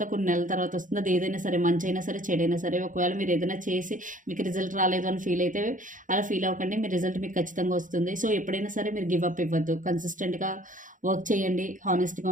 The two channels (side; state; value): left; late; 0.38 ms